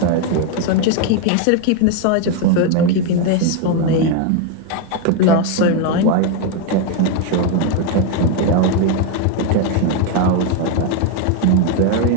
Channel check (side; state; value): both; different; correlation 0.01